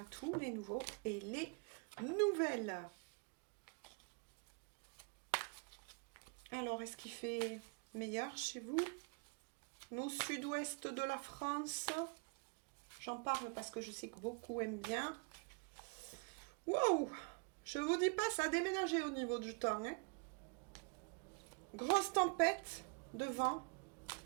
tous les nouveaux et les nouvelles. Alors, est-ce qu'il fait meilleur chez vous? Nous, sud-ouest de la France, j'en parle parce que je sais que beaucoup aiment bien. Wow! Je vous dis pas, ça a déménagé au niveau du temps. Hein. Grosse tempête de vent.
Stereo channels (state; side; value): quieter; left; 34.8 dB